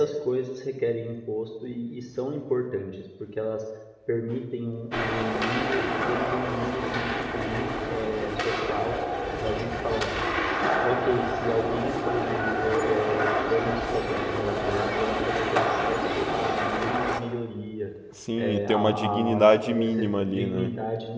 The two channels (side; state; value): both; identical; correlation 1.00